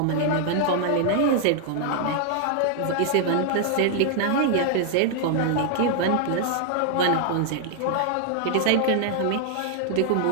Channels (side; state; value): both; different; correlation 0.00